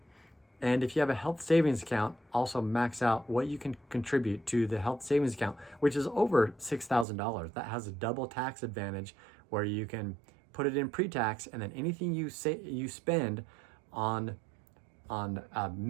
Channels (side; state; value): left; drops out; at 7.1 s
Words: and if you have a health savings account, also max out what you can contribute to the health savings account, which is over $6,000. That has a double tax advantage, where you can put it in pre-tax, and then anything you spend on